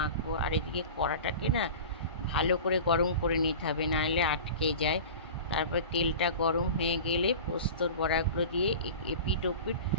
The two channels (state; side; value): inverted; both; correlation -0.35